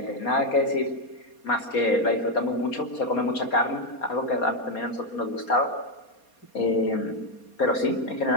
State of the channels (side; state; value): right; late; 4.3 ms